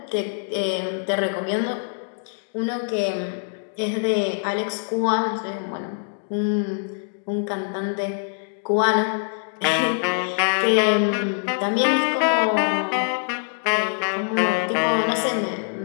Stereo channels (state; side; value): silent; right; digital silence